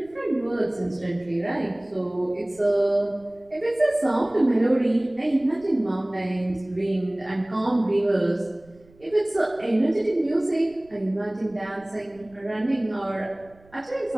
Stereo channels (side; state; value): right; noise; rumble, 28 dB below the sound